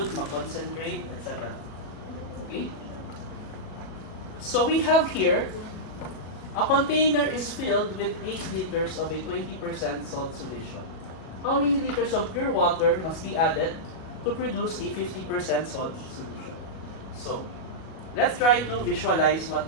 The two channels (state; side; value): late; right; 37 ms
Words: mag-concentrate, etc. Okay? So we have here, a container is filled with 8 liters of a 20% salt solution. How many liters of pure water must be added to produce a 50% salt solution? So, let's try to visualize